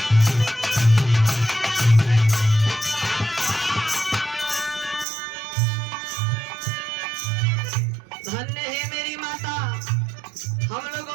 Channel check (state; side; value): drops out; left; at 5.1 s